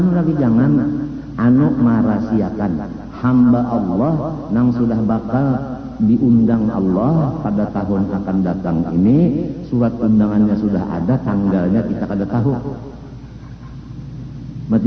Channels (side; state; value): both; identical; correlation 1.00